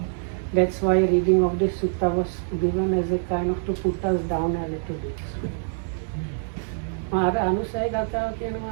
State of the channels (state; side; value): silent; left; digital silence